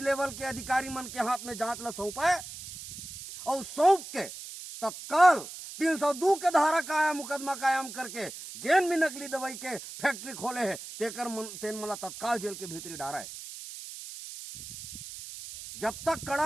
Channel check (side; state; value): right; noise; hiss, 11 dB below the sound